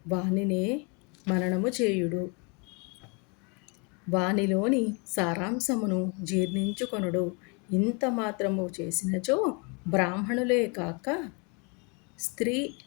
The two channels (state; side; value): quieter; right; 33.2 dB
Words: వానినే మననము చేయుడు. వానిలోని సారాంశమును జీర్ణించుకొనుడు. ఇంత మాత్రము చేసినచో బ్రాహ్మణులే కాక స్త్రీ